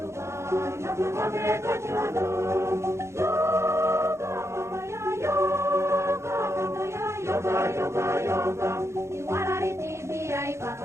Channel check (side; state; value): left; late; 0.13 ms